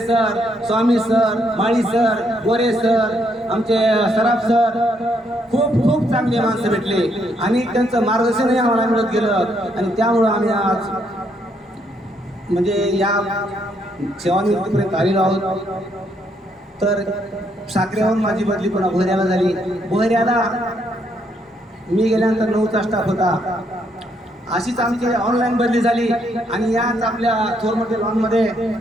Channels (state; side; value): normal; both; correlation 0.73